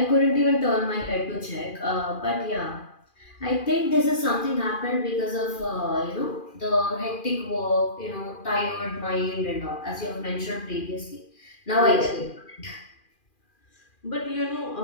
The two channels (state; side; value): late; right; 2.4 ms